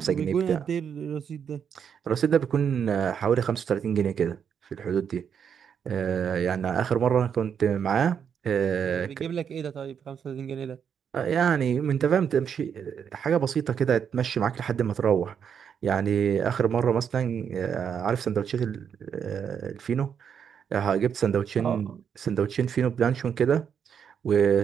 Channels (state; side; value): quieter; left; 7.6 dB